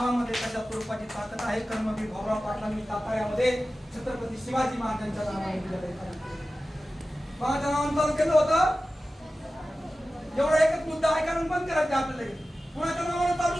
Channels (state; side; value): normal; both; correlation 0.95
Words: कशा स्वरूपाची ताकद आहे. कर्मवीर भाऊराव पाटलांनी साताऱ्यामध्ये छत्रपती शिवाजी महाराजांच्या नावाने विद्यालय चालू केलं. कोणाच्या नावाने चालू केलं होतं. एवढा एकच मुद्दा आहे कारण बंद करायचं आपल्याला. कोणाच्या नावाने चालू